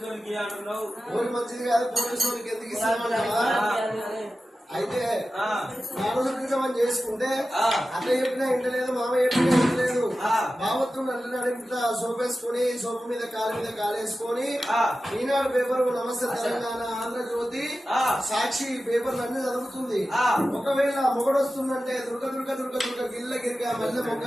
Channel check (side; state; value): both; normal; correlation 0.94